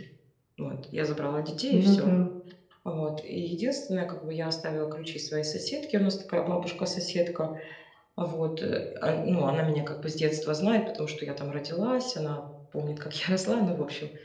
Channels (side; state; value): both; identical; correlation 1.00